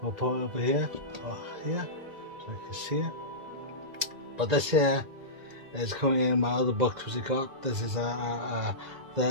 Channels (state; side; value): late; left; 2.0 ms